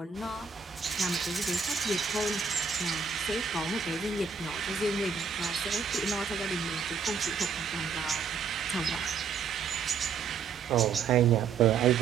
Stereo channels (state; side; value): quieter; left; 5.9 dB